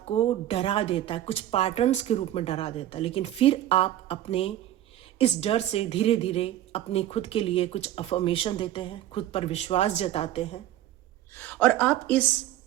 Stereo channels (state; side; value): quieter; left; 12.9 dB